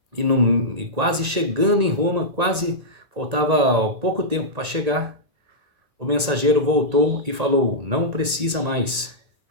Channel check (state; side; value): late; left; 1.9 ms